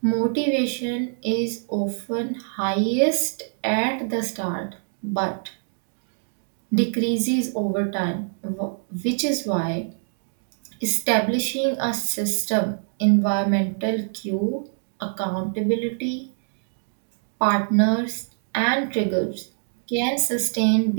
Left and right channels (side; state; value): left; silent; digital silence